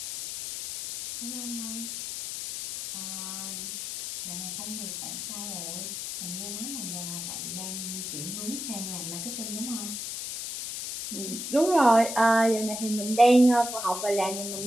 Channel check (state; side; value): noise; left; hiss, 5 dB below the sound